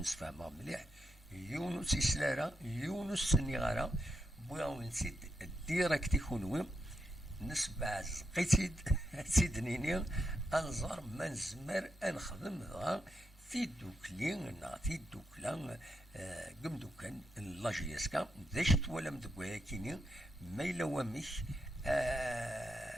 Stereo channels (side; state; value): both; normal; correlation 0.84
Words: فاهمها مليح يونس سلارة يونس سنيغارة بويا نسيت ديريكت يكونوا نسبع زقيتيد سيدنيني انظر من زمر انخدم ذا في دوكلين نعطي دوكلان قم دوكان لاجيسكا داشت ولا مدقويا كيني ما إلا ومش